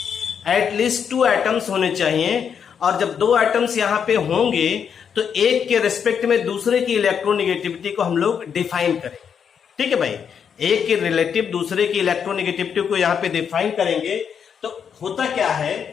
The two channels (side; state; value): right; quieter; 7.4 dB